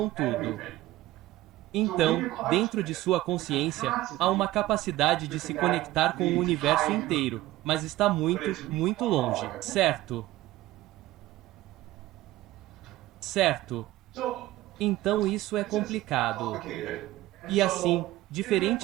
tudo. Então, dentro de sua consciência, há uma capacidade de se conectar com o universo inteiro, mas está muito, muito longe, certo? Certo. Então isso é complicado. E assim,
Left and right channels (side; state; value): left; quieter; 16.5 dB